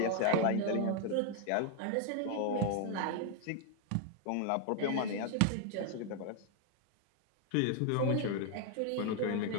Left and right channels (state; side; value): different; both; correlation 0.00